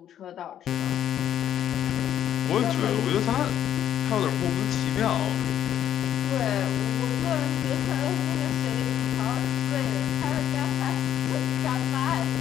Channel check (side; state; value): right; quieter; 10.5 dB